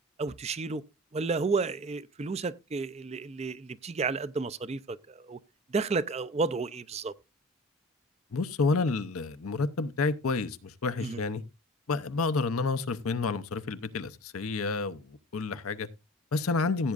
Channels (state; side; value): normal; both; correlation 0.39